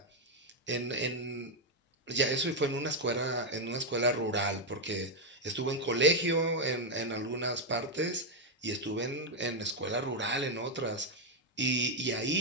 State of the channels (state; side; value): normal; both; correlation 0.01